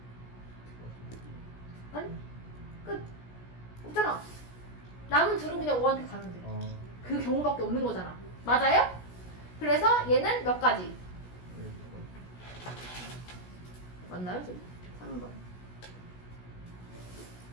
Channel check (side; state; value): right; late; 17 ms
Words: 아니? 끝. 없잖아. 남은 둘은 그냥 5한테 가면 돼. 그 경우밖에 없는 거잖아. 맞아요? 그래서 얘는 몇 가지? 맞나요? 지금? 3번.